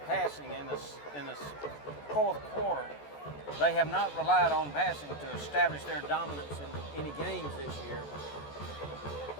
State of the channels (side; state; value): right; late; 14 ms